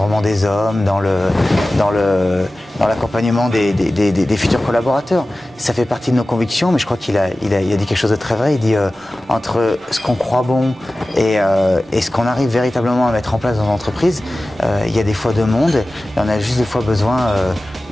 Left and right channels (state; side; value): normal; both; correlation 0.96